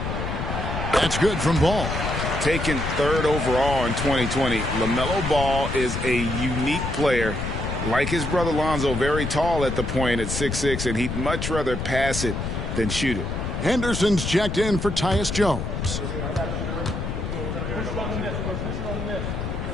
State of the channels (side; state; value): left; noise; rumble, 3 dB below the sound